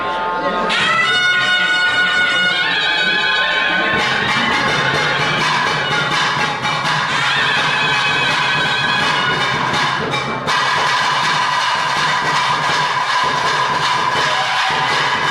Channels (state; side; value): identical; both; correlation 1.00